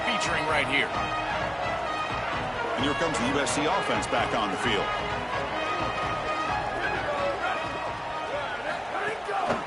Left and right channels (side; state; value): both; identical; correlation 1.00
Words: featuring right here. And here comes the USC offense back on the field.